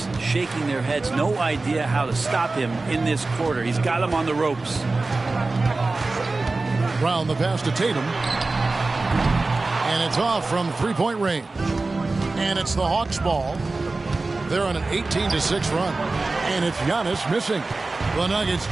shaking their heads. No idea how to stop him in this quarter. He's got him on the ropes. Brown the pass to Tatum. And it's off from three-point range. And it's the Hawks ball. They're on an 18-6 run. And it's Giannis missing. The Nuggets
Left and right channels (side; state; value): left; quieter; 3.5 dB